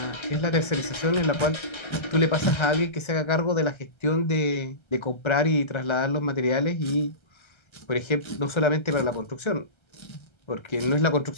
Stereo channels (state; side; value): late; right; 1.3 ms